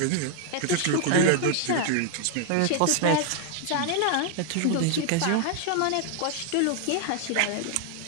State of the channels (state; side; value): different; both; correlation 0.00